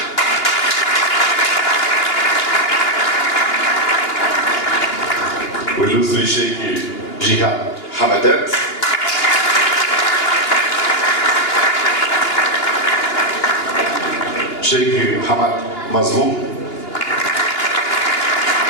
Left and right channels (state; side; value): late; right; 2.9 ms